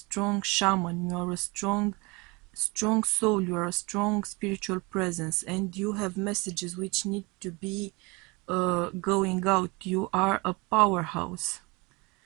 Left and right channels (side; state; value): left; quieter; 27.0 dB